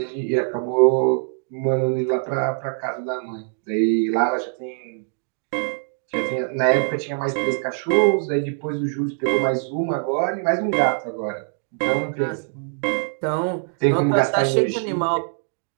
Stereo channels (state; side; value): silent; left; digital silence